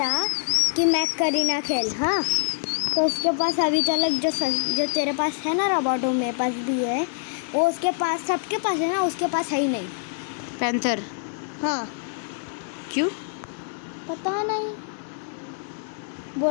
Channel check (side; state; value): right; silent; 62 dB below the other